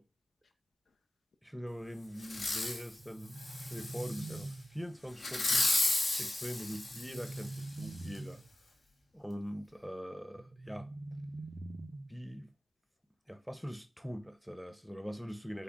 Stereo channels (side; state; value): both; normal; correlation 0.95